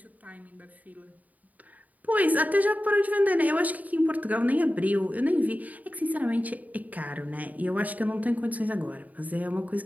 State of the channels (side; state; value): left; late; 0.076 ms